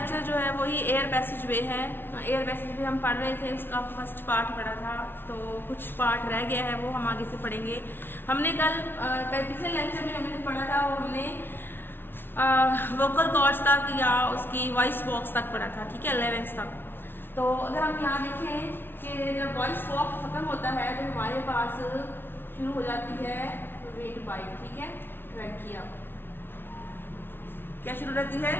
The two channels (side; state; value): right; late; 0.11 ms